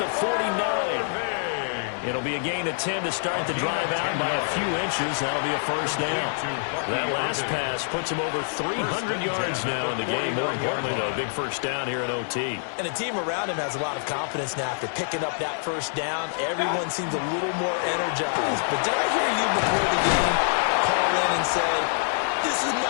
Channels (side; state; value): right; silent; digital silence